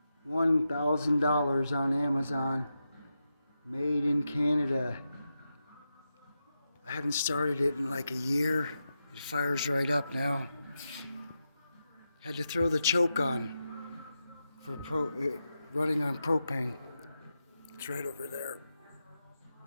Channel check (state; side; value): inverted; both; correlation -0.88